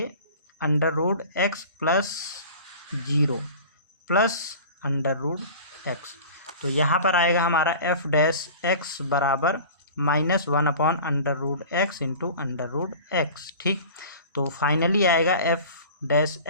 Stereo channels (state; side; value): inverted; both; correlation -0.40